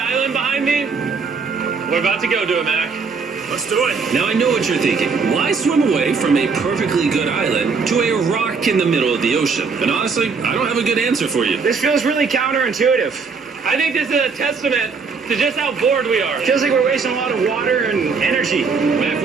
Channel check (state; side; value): quieter; left; 5.0 dB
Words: behind me? We're about to go to it, Mac. Let's do it. Now I know what you're thinking. Why swim away from a perfectly good island to a rock in the middle of the ocean? And honestly, I don't have a good answer for you. This feels really counterintuitive. I think this is a testament to just how bored we are. Feels like we're wasting a lot of water and energy. Mac,